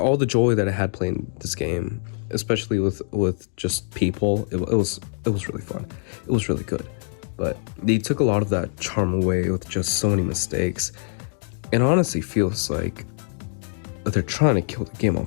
the joy that I had playing this game, especially with just people, it was really fun. It was really good, but they took a lot of that charm away with just so many mistakes. It honestly feels like they're trying to kill the game on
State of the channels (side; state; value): right; silent; digital silence